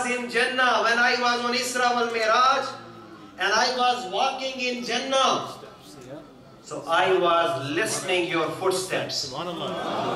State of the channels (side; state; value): both; identical; correlation 1.00